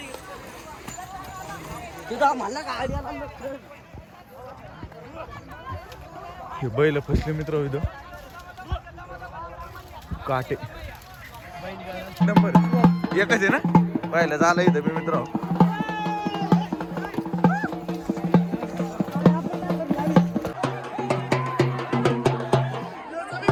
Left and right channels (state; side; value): identical; both; correlation 1.00